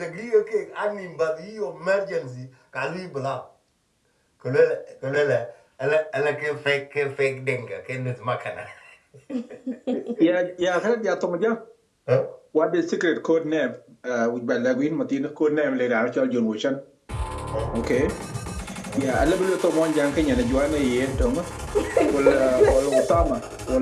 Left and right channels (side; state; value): both; identical; correlation 1.00